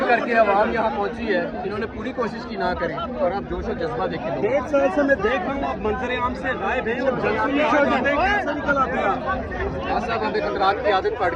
करके आवाम यहाँ पहुँची है। इन्होंने पूरी कोशिश की ना करें और आप जोश और जज्बा देखें। 1.5 साल से मैं देख रहा हूँ आप मंजर आम से गायब हैं और जलसों में आ जाते हैं, कैसे निकल आते हैं आप? साहब हमें कंदरात की आदत पड़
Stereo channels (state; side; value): identical; both; correlation 1.00